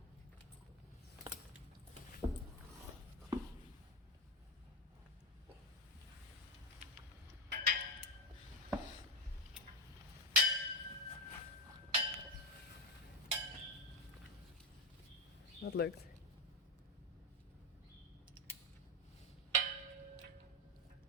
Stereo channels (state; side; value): normal; both; correlation 0.08